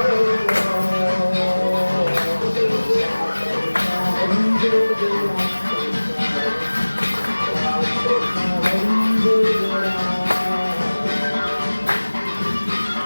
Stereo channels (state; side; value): inverted; both; correlation -1.00